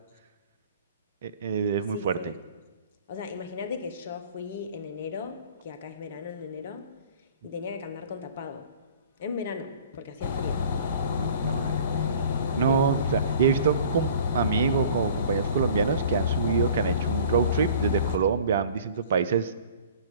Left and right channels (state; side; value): inverted; both; correlation -0.48